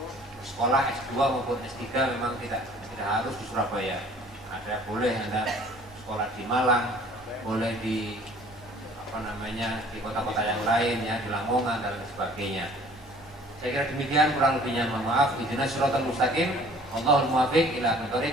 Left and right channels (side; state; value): both; normal; correlation 0.52